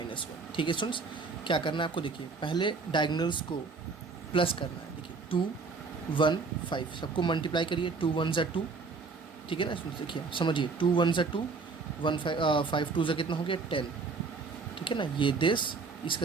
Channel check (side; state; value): left; quieter; 4.5 dB